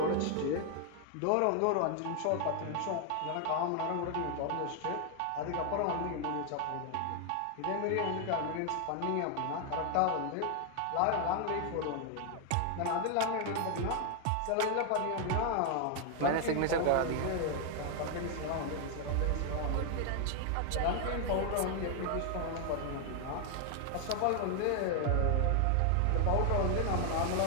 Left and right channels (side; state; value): both; different; correlation 0.00